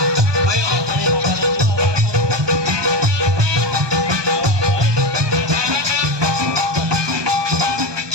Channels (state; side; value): late; left; 1.2 ms